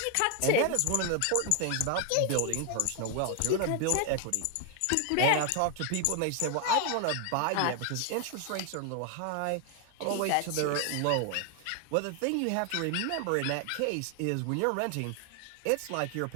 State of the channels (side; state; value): both; different; correlation 0.00